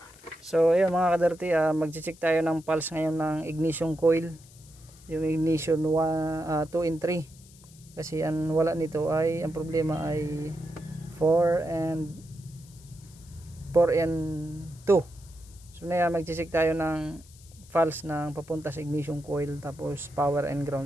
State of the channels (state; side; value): noise; left; hiss, 24 dB below the sound